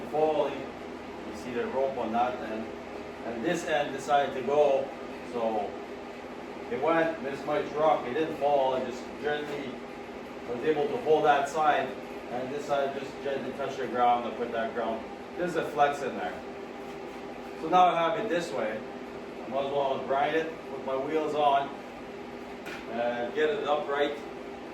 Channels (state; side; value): identical; both; correlation 1.00